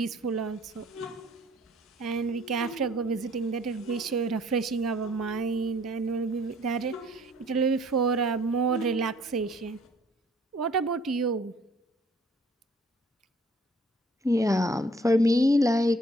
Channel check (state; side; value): normal; both; correlation 0.58